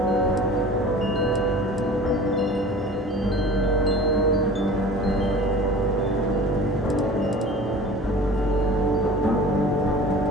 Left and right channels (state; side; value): normal; both; correlation 0.41